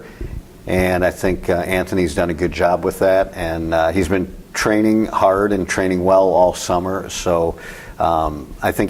And I think Anthony's done a good job with that, and he's been training hard and training well all summer. So I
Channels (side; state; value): both; identical; correlation 1.00